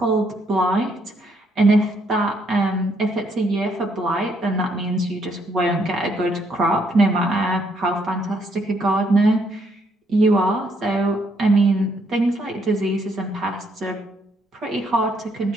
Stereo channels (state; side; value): normal; both; correlation 0.71